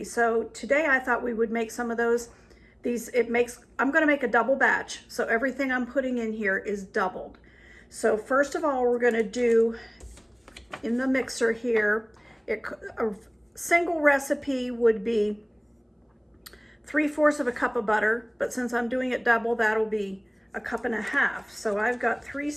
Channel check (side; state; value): both; identical; correlation 1.00